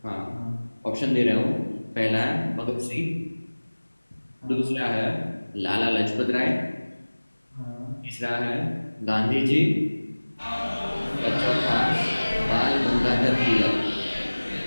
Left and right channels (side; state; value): both; inverted; correlation -1.00